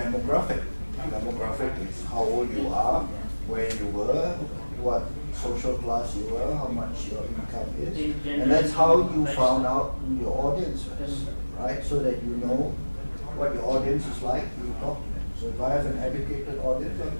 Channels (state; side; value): inverted; both; correlation -1.00